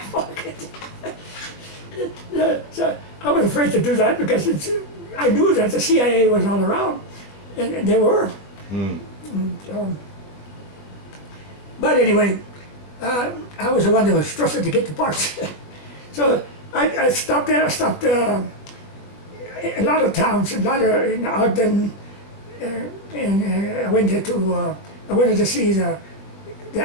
market. So I was afraid to do that because I knew that the CIA was all around, and they were. So, but anyway, I was the one that was trusted to get the parts. So I stopped there. I stopped a lot of towns, a lot of in Ogden, and I went to I wanted to see the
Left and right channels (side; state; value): right; late; 21 ms